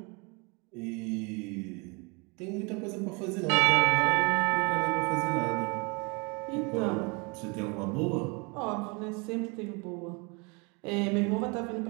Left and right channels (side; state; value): left; quieter; 29.5 dB